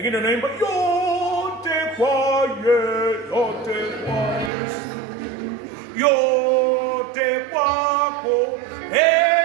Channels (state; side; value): drops out; left; at 4.5 s